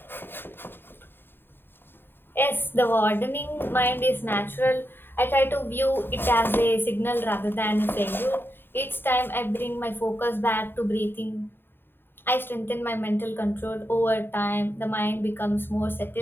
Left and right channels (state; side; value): late; right; 0.10 ms